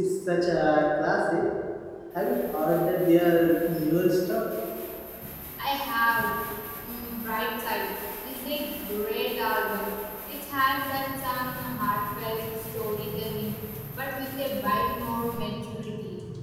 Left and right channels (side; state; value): both; identical; correlation 1.00